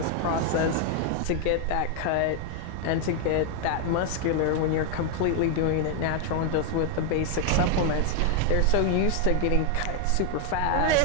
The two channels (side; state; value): both; different; correlation 0.01